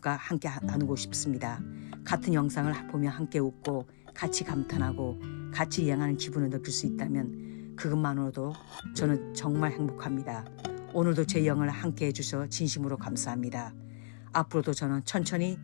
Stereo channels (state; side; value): silent; right; digital silence